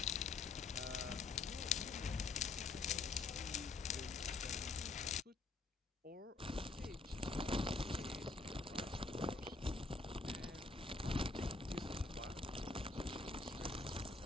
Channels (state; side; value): quieter; right; 3.8 dB